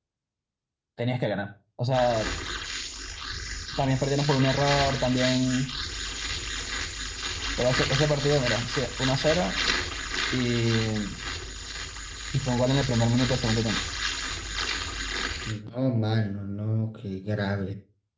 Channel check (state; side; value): identical; both; correlation 1.00